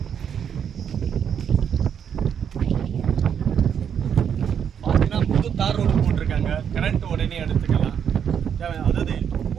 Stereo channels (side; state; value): left; quieter; 8.0 dB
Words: பார்த்தீங்கன்னா புது தார் ரோடு போட்டிருக்காங்க. கரண்ட் உடனே எடுத்துக்கலாம். அதாவது